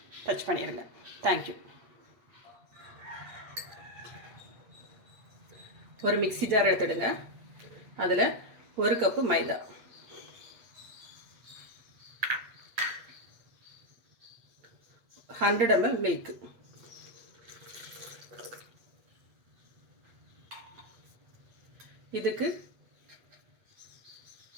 டச் பண்ணிடுங்க. தேங்க்யூ. ஒரு மிக்ஸி ஜார் எடுத்துடுங்க. அதில் 1 கப்பு மைதா, 100 ml மில்க், இதுக்கு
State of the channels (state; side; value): late; left; 8.4 ms